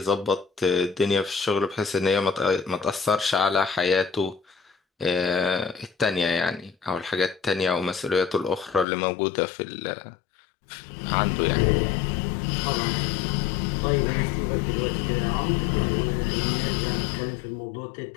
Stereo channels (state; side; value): drops out; right; at 8.8 s